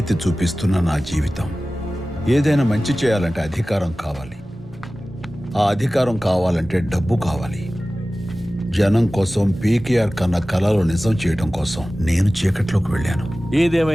చూపిస్తున్న నా జీవితం. ఏదైనా మంచి చేయాలంటే అధికారం కావాలి, ఆ అధికారం కావాలంటే డబ్బు కావాలి. జనం కోసం, పీకేఆర్ కన్న కళలు నిజం చేయడం కోసం నేను చీకట్లోకి వెళ్ళాను.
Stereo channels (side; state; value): right; noise; hum, 29 dB below the sound